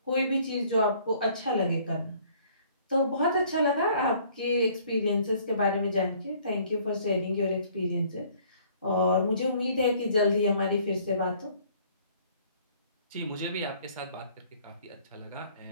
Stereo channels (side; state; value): both; inverted; correlation -0.58